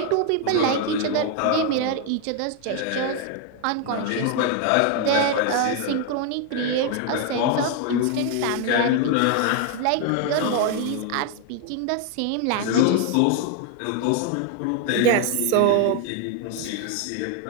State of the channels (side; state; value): both; different; correlation 0.00